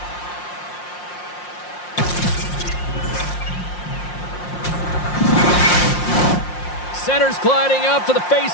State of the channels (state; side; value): late; right; 5.6 ms